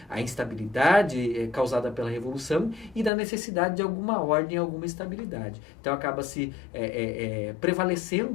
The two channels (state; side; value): drops out; right; at 3.1 s